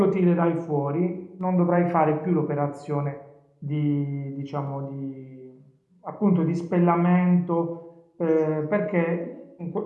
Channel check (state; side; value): identical; both; correlation 1.00